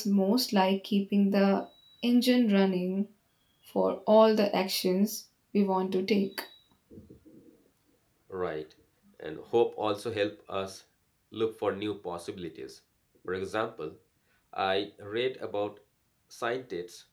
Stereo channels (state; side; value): identical; both; correlation 1.00